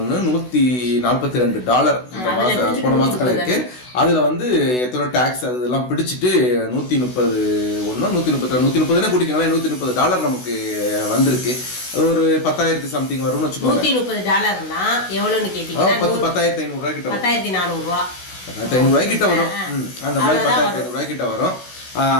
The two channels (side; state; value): right; late; 16 ms